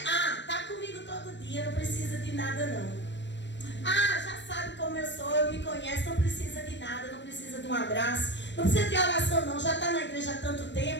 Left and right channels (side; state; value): right; late; 0.53 ms